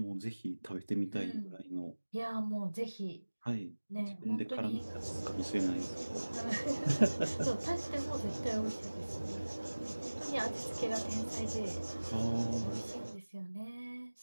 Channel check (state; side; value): inverted; both; correlation -1.00